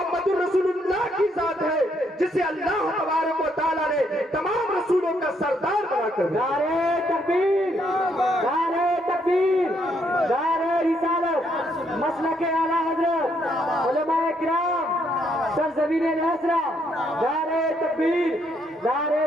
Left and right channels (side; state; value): both; normal; correlation 0.73